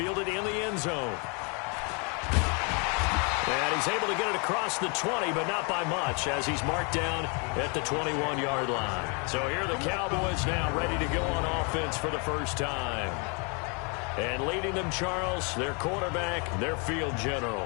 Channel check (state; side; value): quieter; right; 34.1 dB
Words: in the end zone. And he's able to get it across the 20, but not by much, as he's marked down at the 21-yard line. So here are the Cowboys now ready to go on offense for the first time. And leading them, Charles, their quarterback, their field